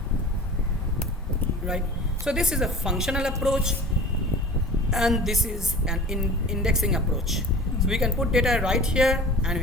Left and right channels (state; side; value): normal; both; correlation 0.39